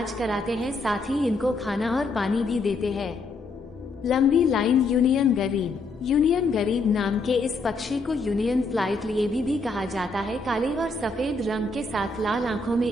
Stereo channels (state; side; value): quieter; right; 3.4 dB